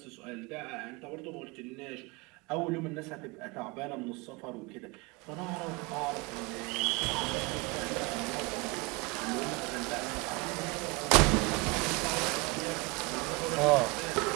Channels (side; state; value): left; quieter; 26.7 dB